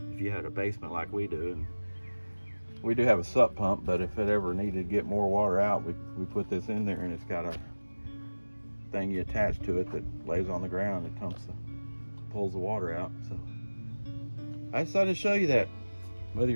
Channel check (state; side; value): inverted; both; correlation -1.00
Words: had a basement like we do, and we do have a sup pump, but if it ever needed to get more water out, we put this in there, and it's got a thing you attach to it that lays on the ground. It pulls the water out. So I decided to show you that. Whether